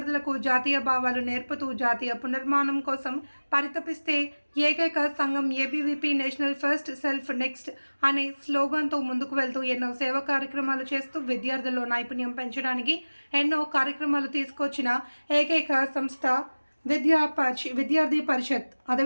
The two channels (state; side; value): inverted; both; correlation -1.00